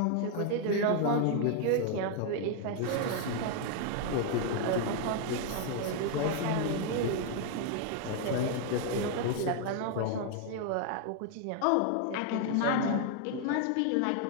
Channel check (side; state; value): both; different; correlation 0.00